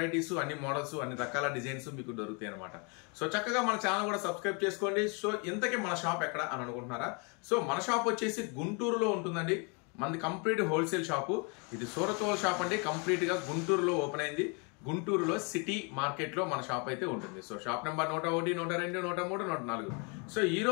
అన్ని మోడల్స్, అన్ని రకాల డిజైన్స్ మీకు దొరుకుతాయి అనమాట. సో చక్కగా మన ఛానల్ కూడా సబ్స్క్రైబ్ చేసుకోండి. సో ఇంతకీ మన షాప్ ఎక్కడ అని అనుకుంటున్నారా? సో మన షాప్ వచ్చేసి గుంటూరులో ఉంటుందండి. మనది కంప్లీట్ హోల్సేల్ షాపు. ఇది సూరత్ హోల్ షాప్ అండి. కంప్లీట్ గా గుంటూరులో ఓపెన్ అయింది. గుంటూరులో సిటీ మార్కెట్ లో మన షాప్ అయితే ఉంటుంది. So shop number 101, 102, 103, 104. సో ఈ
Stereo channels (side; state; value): right; quieter; 34.0 dB